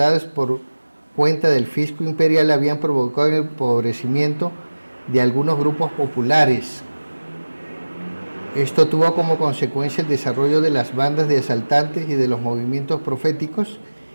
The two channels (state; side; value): inverted; both; correlation -1.00